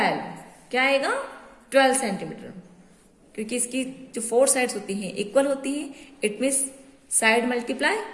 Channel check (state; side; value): identical; both; correlation 1.00